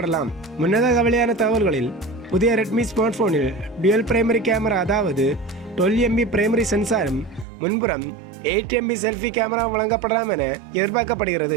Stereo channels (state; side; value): drops out; left; at 7.5 s